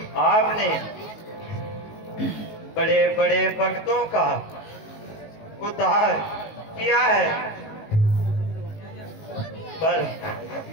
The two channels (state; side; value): late; right; 19 ms